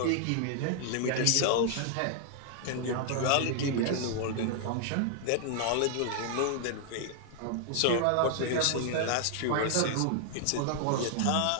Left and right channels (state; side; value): different; both; correlation 0.00